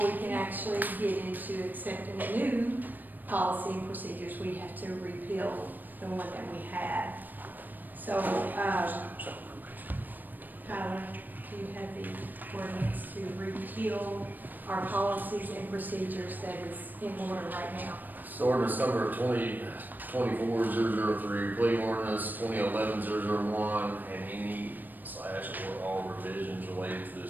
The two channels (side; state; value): left; late; 0.089 ms